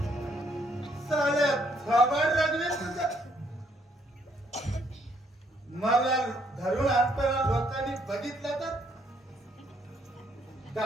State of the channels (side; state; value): both; normal; correlation 0.69